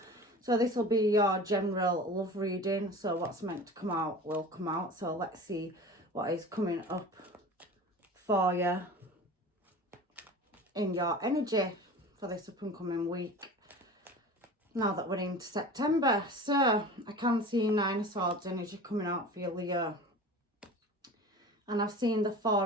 So this will be your general love reading. So what's meant to come out will come out. So let's see what is coming up for you in your energy for this up and coming week. Now that we're into September. So I can see Nine of Swords energy coming out for you, Leo. And I've seen the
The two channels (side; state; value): both; normal; correlation 0.37